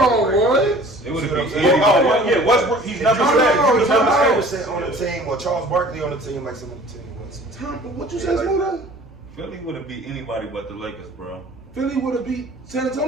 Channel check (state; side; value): normal; both; correlation 0.48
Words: with great what? players. It would've See what been I'm saying? anybody. Yeah, Westbrook. He's never No, said. no, He was no, never no. said. was sitting on the team, or Charles Barkley on the team, like some of the team was. Tom, what you Yeah, say, like Smooda? Philly would have beat anybody but the Lakers, bro. Philly would have beat San